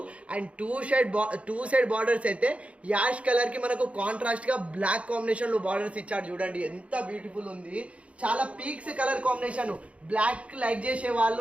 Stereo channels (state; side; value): late; left; 0.063 ms